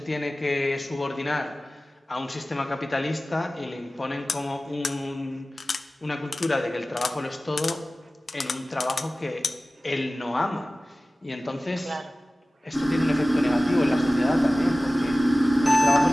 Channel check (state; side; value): normal; both; correlation 0.97